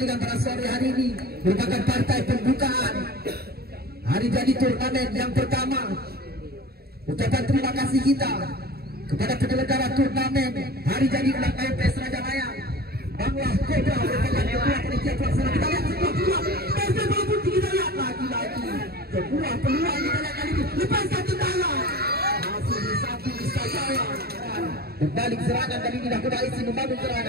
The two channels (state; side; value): late; left; 0.45 ms